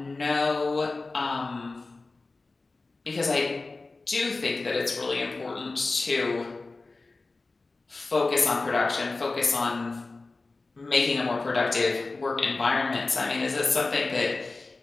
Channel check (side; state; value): right; quieter; 3.5 dB